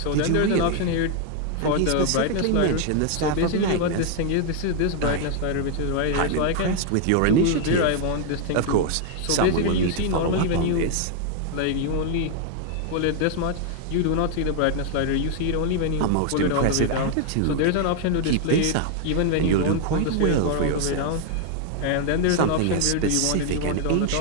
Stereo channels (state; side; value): different; both; correlation 0.00